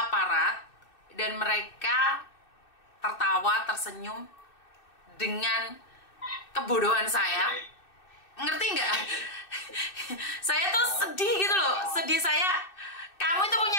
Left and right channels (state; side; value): late; right; 2.6 ms